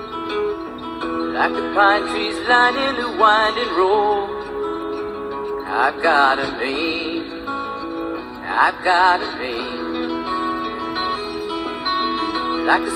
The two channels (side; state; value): both; identical; correlation 1.00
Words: Like the pine trees lining the winding road, I've got a name, I've got a name. Like the